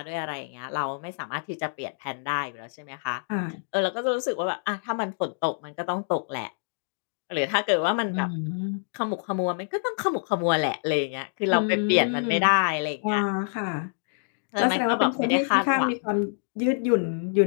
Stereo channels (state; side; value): silent; right; digital silence